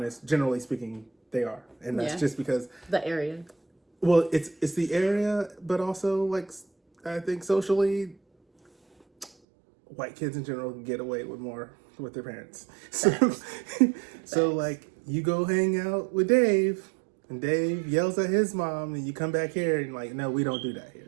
generally speaking, they are, and that's just because the area. Well, it's the area, but also like I think socially, white kids in general can get away with more with their parents. So like you go hang out with Dave. And Dave yells at his mom, and you come back here and like, no, we don't do that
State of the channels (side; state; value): left; drops out; at 9.3 s